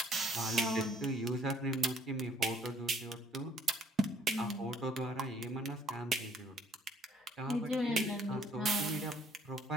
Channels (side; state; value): both; normal; correlation 0.61